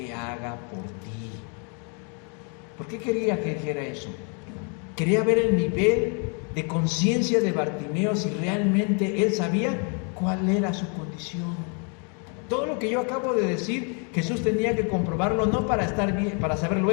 haga por ti? ¿Por qué quería que dijera eso? Quería ver el nivel de conciencia de Bartimeo, si realmente él sabía cuál era su condición. Todo lo que yo acabo de decir, Jesús tenía que comprobarlo, no para estar bien, para saberlo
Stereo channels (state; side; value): quieter; right; 38.0 dB